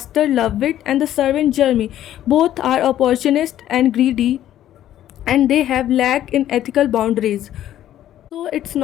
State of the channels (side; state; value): right; quieter; 12.1 dB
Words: Lovewit and the servant Jeremy both are opportunist and greedy and they have lack in ethical boundaries. So it's